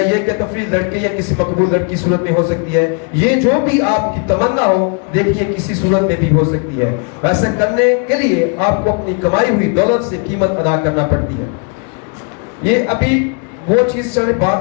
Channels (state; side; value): quieter; right; 36.6 dB